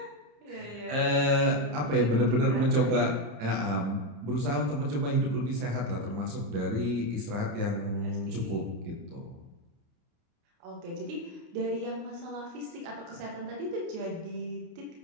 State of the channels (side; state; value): left; late; 29 ms